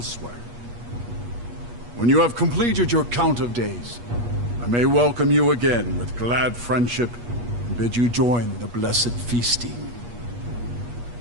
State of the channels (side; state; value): left; late; 8.3 ms